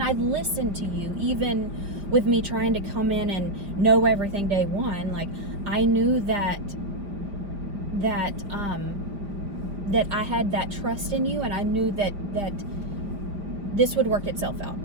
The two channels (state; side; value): late; left; 5.0 ms